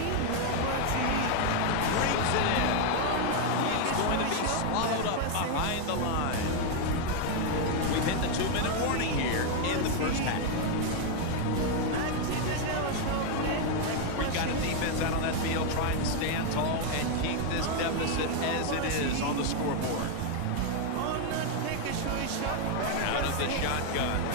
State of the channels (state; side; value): different; both; correlation 0.01